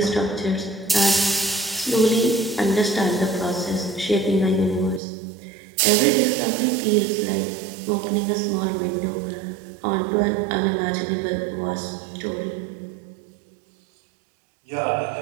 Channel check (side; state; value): left; drops out; at 5.0 s